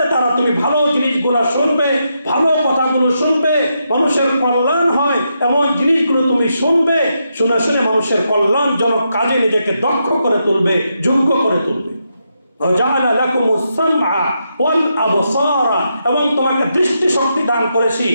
দ্বারা তুমি ভালো জিনিসগুলো শুনবে, ভালো কথাগুলো শুনবে, মানুষের কল্যাণ হয় এমন জিনিসগুলো তুমি শুনবে, শুনে শুনে মানুষের কল্যাণজনক কাজে নিজেকে দক্ষ করে তুলবে, যোগ্য করে তুলবে। এবং তোমাকে দৃষ্টি শক্তি দান করেছি,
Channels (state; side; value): inverted; both; correlation -0.83